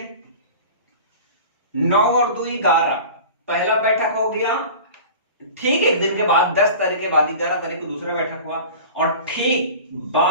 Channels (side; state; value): both; inverted; correlation -0.37